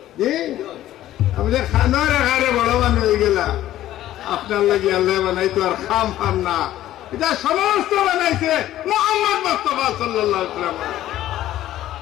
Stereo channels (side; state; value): right; quieter; 13.6 dB